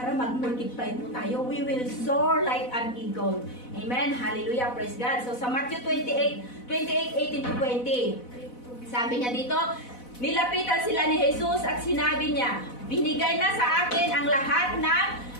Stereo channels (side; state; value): right; late; 4.0 ms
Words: mag-multiply po tayo, we will soar like an eagle. Amen? Hallelujah. Praise God. So sa Matthew 28:18-20, sabi niya dito, nilapitan sila ni Jesus at sinabi niya, binigay na sa akin ang lahat ng